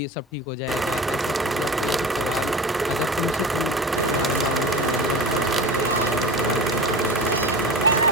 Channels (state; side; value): normal; both; correlation 0.32